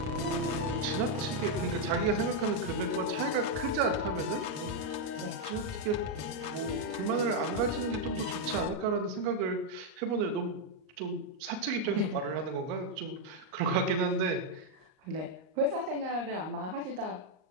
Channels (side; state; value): left; late; 38 ms